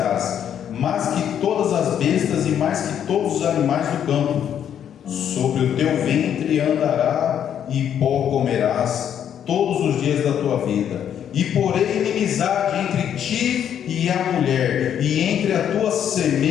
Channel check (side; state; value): right; quieter; 9.3 dB